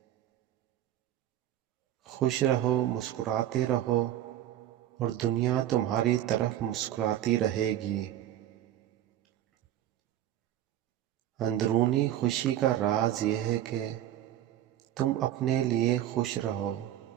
خوش رہو، مسکراتے رہو، اور دنیا تمہاری طرف مسکراتی رہے گی۔ اندرونی خوشی کا راز یہ ہے کہ تم اپنے لیے خوش رہو،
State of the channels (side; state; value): left; quieter; 12.3 dB